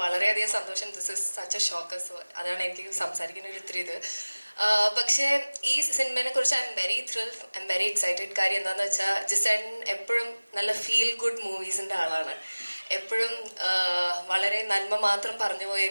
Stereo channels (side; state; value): both; inverted; correlation -1.00